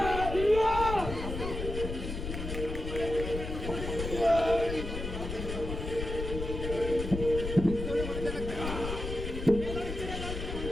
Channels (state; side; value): noise; left; rumble, 5 dB below the sound